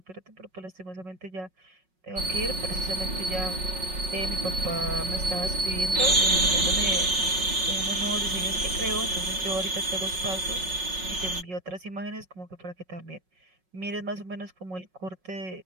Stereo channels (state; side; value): late; left; 5.4 ms